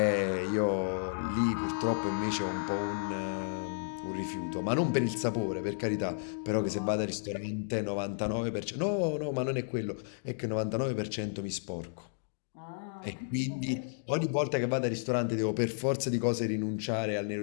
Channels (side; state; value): right; silent; digital silence